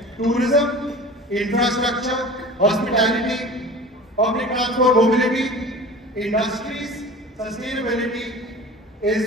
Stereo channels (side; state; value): both; normal; correlation 0.38